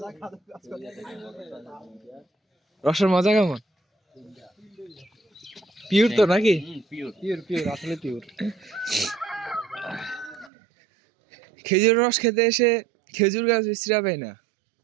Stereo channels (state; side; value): drops out; left; at 10.5 s